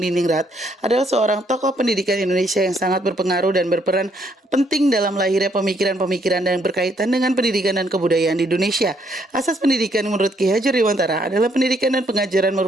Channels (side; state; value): both; normal; correlation 0.70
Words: adalah seorang tokoh pendidikan Indonesia yang sangat berpengaruh dan berperan penting dalam lahirnya pemikiran-pemikiran yang berkaitan dengan pendidikan dan kebudayaan di Indonesia. Asas pendidikan menurut Ki Hajar Dewantara adalah pendidikan dan pengajaran